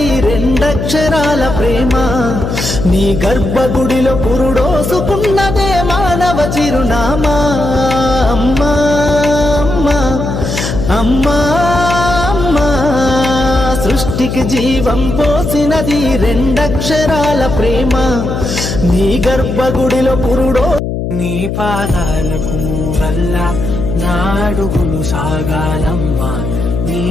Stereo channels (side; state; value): left; noise; hum, 3 dB below the sound